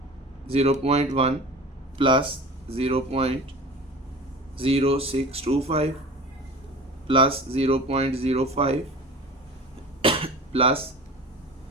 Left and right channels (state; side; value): normal; both; correlation 0.38